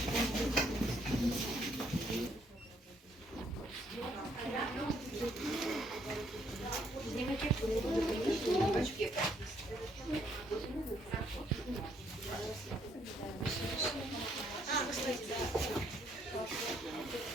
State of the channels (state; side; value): normal; both; correlation 0.69